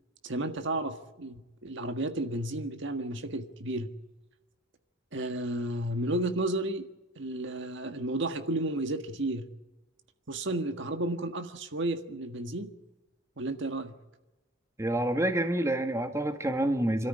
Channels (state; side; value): normal; both; correlation 0.44